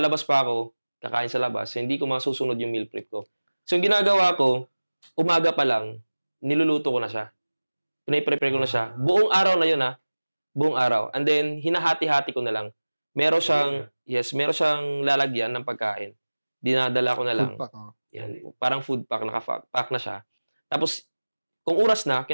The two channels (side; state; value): both; inverted; correlation -1.00